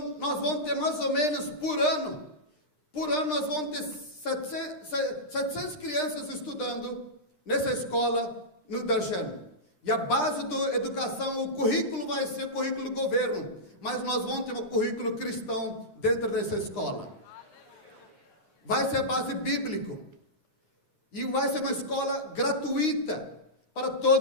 nós vamos ter mais ou menos por ano nós vamos ter 700 crianças estudando nessa escola no Darshan. E a base da educação, o currículo vai ser currículo do governo, mas nós vamos ter um currículo cristão dentro dessa escola. Vai ser a base bíblica. E vai ser uma escola gratuita para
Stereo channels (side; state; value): right; late; 9.8 ms